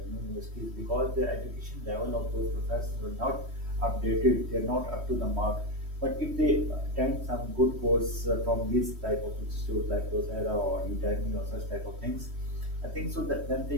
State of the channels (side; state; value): left; late; 3.1 ms